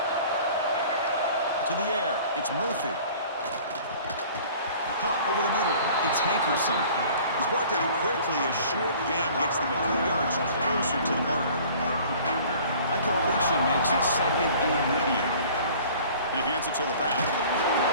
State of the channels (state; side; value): inverted; both; correlation -0.48